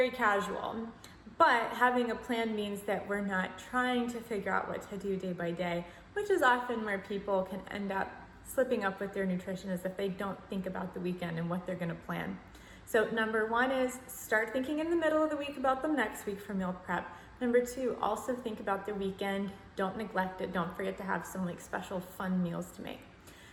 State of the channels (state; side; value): identical; both; correlation 1.00